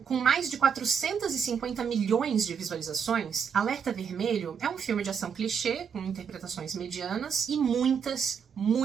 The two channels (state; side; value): quieter; left; 7.0 dB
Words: Com mais de 450 milhões de visualizações, Alerta Vermelho é um filme de ação clichê, com interpretações medianas e muitas